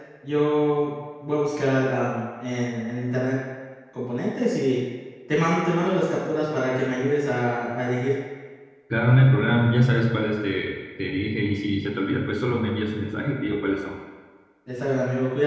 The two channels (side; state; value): both; identical; correlation 1.00